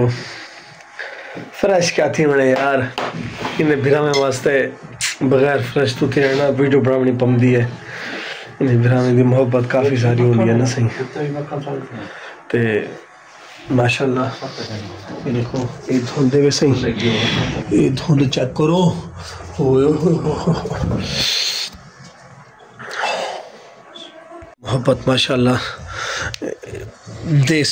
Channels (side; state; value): both; identical; correlation 1.00